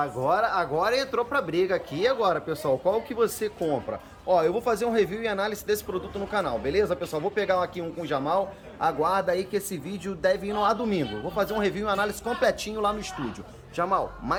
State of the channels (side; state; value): both; identical; correlation 1.00